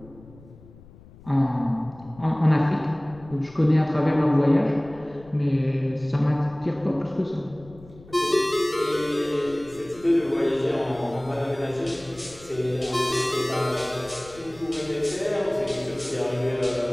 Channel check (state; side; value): noise; left; rumble, 22 dB below the sound